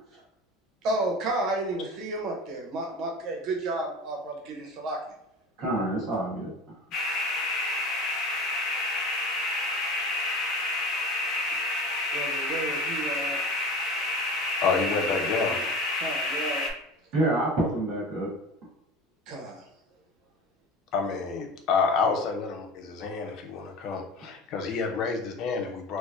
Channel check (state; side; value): normal; both; correlation 0.34